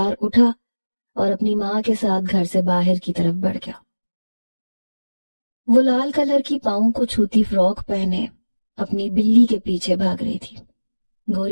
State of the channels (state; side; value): inverted; both; correlation -1.00